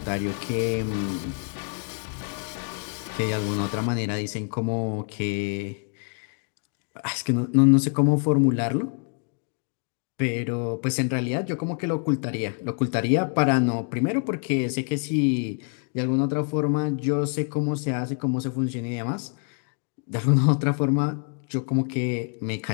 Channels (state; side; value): quieter; right; 39.8 dB